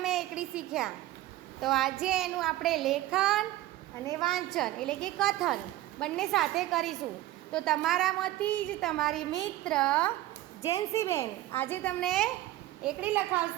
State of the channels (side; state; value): left; quieter; 15.8 dB